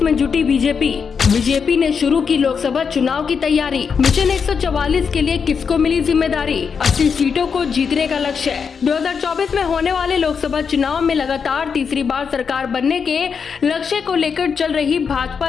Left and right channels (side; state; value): right; quieter; 6.1 dB